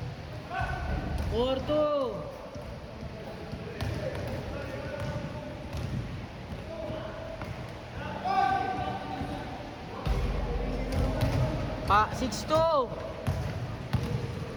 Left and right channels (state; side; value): identical; both; correlation 1.00